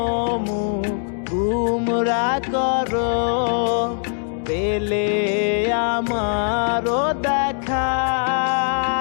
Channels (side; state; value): right; silent; 65 dB below the other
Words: মুখ গুমরা করো, পেলে আমারও দেখা।